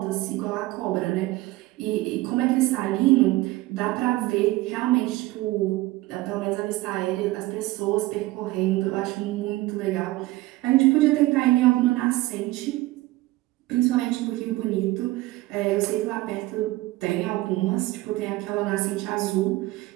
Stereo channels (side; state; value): left; quieter; 18.8 dB